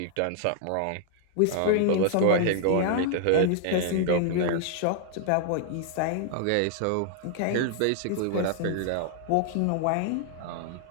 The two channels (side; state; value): both; different; correlation 0.00